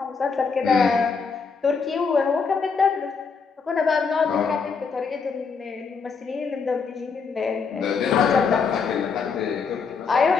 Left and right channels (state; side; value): quieter; right; 5.4 dB